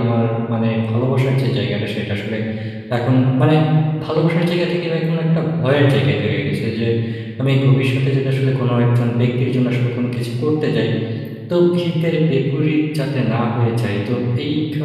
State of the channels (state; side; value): identical; both; correlation 1.00